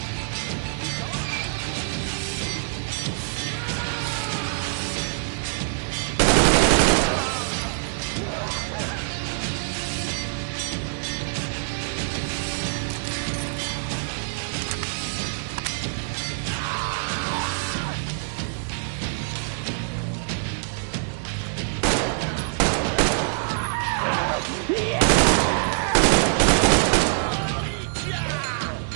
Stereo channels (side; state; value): left; silent; digital silence